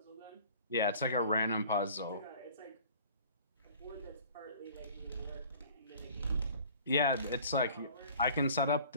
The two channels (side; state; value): both; inverted; correlation -0.48